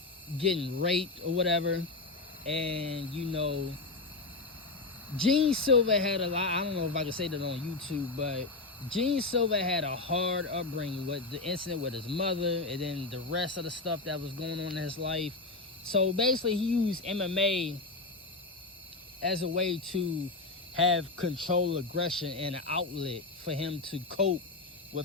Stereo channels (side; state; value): right; quieter; 3.5 dB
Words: raped or whatever. And, Gene Silva had a lot, I don't know if I can say that on YouTube, but Gene Silva had a hard upbringing with the incident with his mother and then the rest of the stuff that was going on in his life. So basically he used MMA as a way to have control, aggression, and an outlet for him to cope